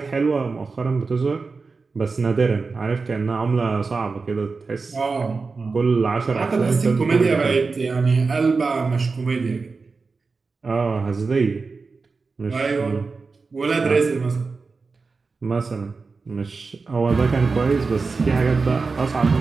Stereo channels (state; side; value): quieter; left; 4.3 dB